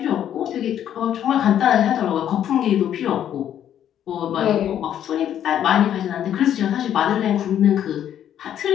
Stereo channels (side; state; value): right; quieter; 10.3 dB